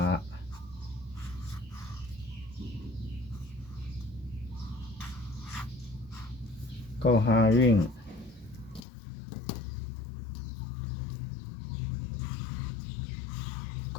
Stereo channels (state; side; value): drops out; right; at 8.8 s